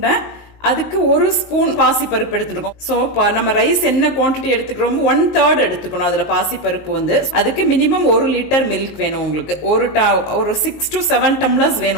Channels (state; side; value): late; right; 19 ms